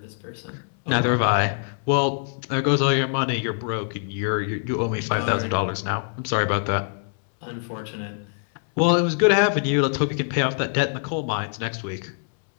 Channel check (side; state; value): right; silent; 63 dB below the other